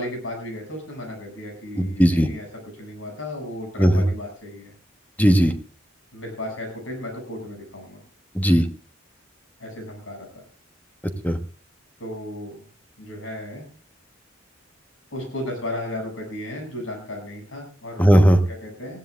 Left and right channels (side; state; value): both; normal; correlation 0.88